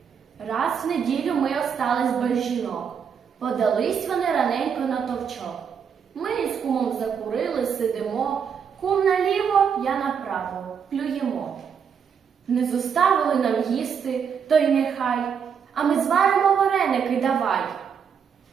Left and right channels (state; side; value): quieter; left; 7.1 dB